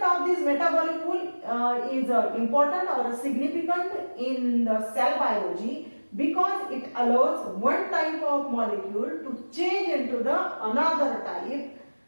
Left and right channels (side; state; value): both; inverted; correlation -1.00